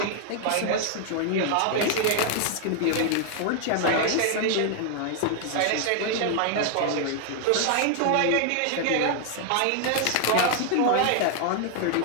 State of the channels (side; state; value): both; different; correlation 0.00